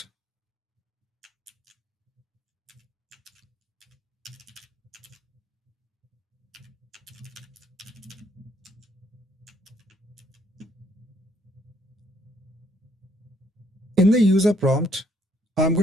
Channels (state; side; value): normal; both; correlation 0.68